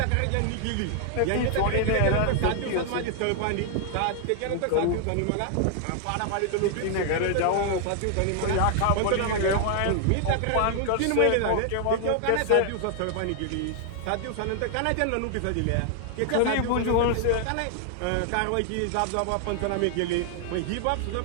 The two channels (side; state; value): both; different; correlation 0.00